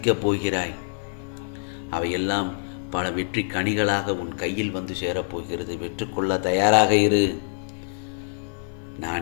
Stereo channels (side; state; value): right; silent; digital silence